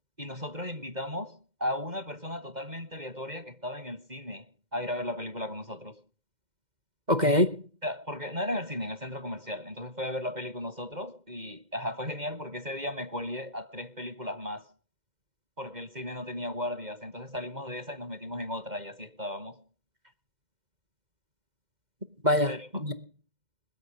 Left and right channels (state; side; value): late; left; 2.1 ms